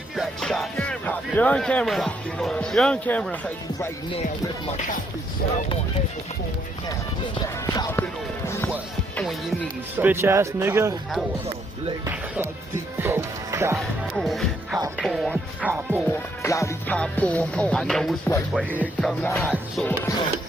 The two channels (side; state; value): both; normal; correlation 0.73